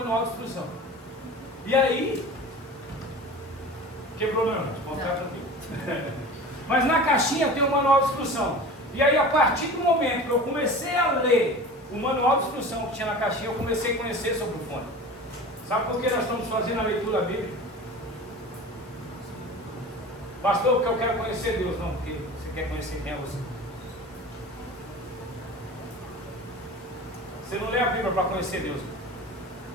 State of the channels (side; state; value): both; normal; correlation 0.36